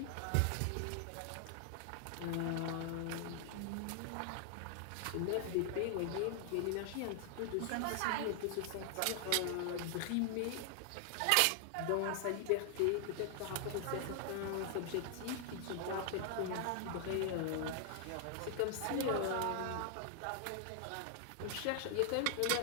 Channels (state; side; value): different; both; correlation 0.00